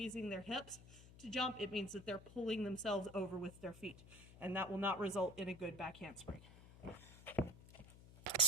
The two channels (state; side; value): noise; left; hum, 19 dB below the sound